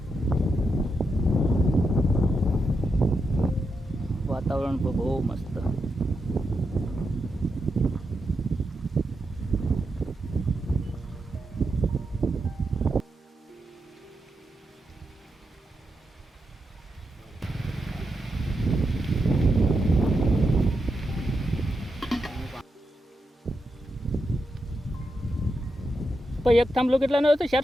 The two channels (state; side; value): normal; both; correlation 0.85